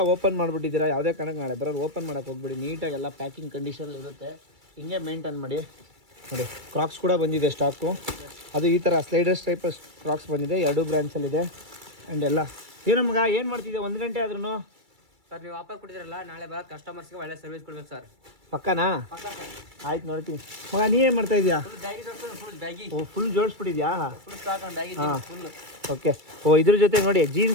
ಓಪನ್ ಮಾಡಿಬಿಟ್ಟಿದ್ದೀರಾ, ಯಾವುದೇ ಕಾರಣಕ್ಕೆ ನಾಳೆ ಬರೋರು ಓಪನ್ ಮಾಡೋಕ್ಕೆ ಹೋಗ್ಬಿಡಿ. ನೀಟಾಗಿ ಎಲ್ಲ ಪ್ಯಾಕಿಂಗ್ ಕಂಡೀಷನಲ್ಲಿ ಇರುತ್ತೆ, ಹಿಂಗೆ ಮೇಂಟೈನ್ ಮಾಡಿ ನೋಡಿ. ಕ್ರಾಕ್ಸ್ ಕೂಡ ಬಂದಿದೆ ಸ್ಟಾಕು. ಅದು ಈ ಥರ ಸ್ಲೈಡರ್ಸ್ ಟೈಪ್ ಕ್ರಾಕ್ಸ್ ಬಂದಿದೆ, 2 ಬ್ರ್ಯಾಂಡ್ಸಲ್ಲಿದೆ. ಆ್ಯಂಡ್ ಎಲ್ಲ ಏನೋ ಮಗ ಏನು ಮಾಡ್ತಿದ್ದೆ 1 ಗಂಟೆ ಆದ್ರೂ? ಸರ್ ನೀವು ಆಫರ್ ಕೊಟ್ಟಿದ್ರಲ್ಲ, ನಾಳೆ ಬರೋ ಕಸ್ಟಮರ್ಸ್ಗೆ ಒಳ್ಳೆ ಸರ್ವಿಸ್ ಕೊಡ್ಬೇಕು ಸರ್. ಪಕ್ಕನಾ? ಆಯ್ತು ನೋಡ್ತೀನಿ. ಮಗ ನೀ ಏನು ಮಾಡ್ತಾ ಇದೆಯಾ? ಓ ಫುಲ್ ಜೋಡಿಸ್ಬಿಟ್ಟಿದ್ಯಾ? ಹಾಂ ಓಕೆ. ಓ ಇದ್ರ ಜೊತೆ ನೋಡಿ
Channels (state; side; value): late; left; 2.3 ms